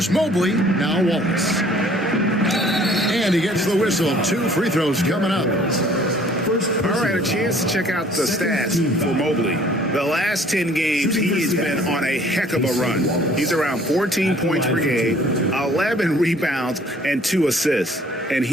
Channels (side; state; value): both; normal; correlation 0.55